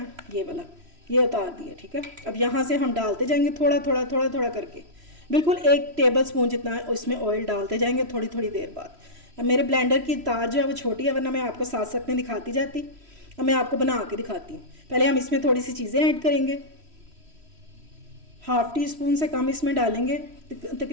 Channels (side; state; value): left; late; 3.1 ms